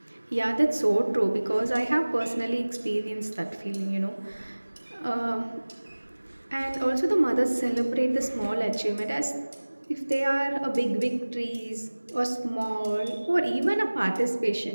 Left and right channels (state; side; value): inverted; both; correlation -1.00